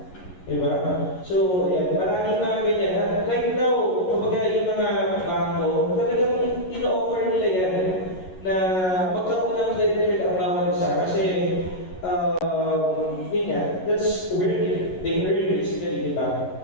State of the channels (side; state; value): right; late; 11 ms